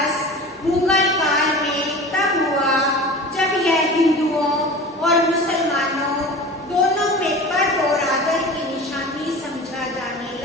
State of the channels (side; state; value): both; normal; correlation 0.36